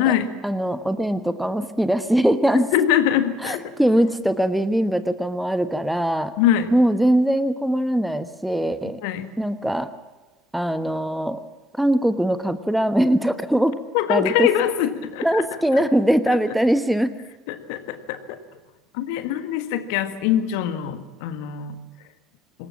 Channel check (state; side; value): normal; both; correlation 0.70